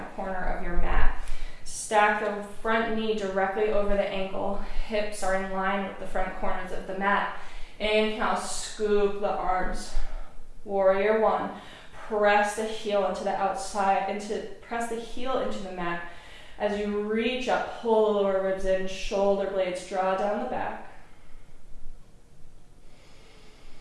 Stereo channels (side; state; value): both; identical; correlation 1.00